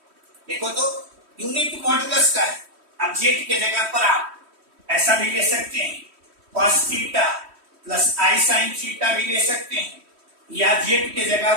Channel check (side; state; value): left; late; 3.1 ms